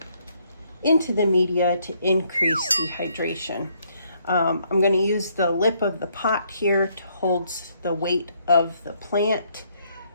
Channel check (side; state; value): both; inverted; correlation -0.70